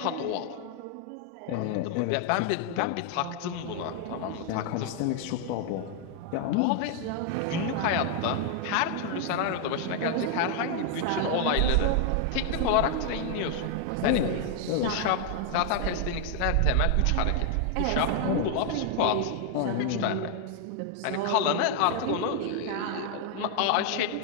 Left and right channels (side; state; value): both; different; correlation 0.00